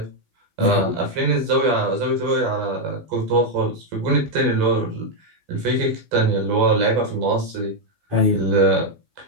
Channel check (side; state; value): left; late; 12 ms